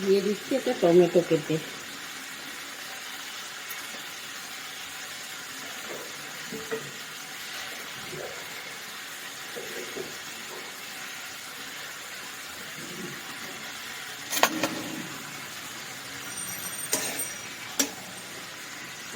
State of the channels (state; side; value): identical; both; correlation 1.00